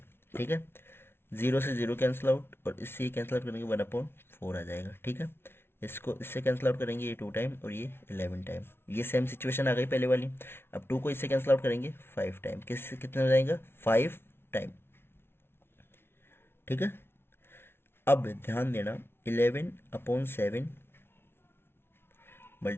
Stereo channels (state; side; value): late; right; 0.12 ms